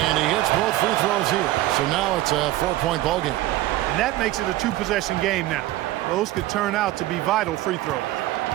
he hits both free throws here. So now it's a 4-point ball game. And that makes it a 2-possession game now. Those could turn out to be vital free throws.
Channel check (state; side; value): quieter; left; 16.0 dB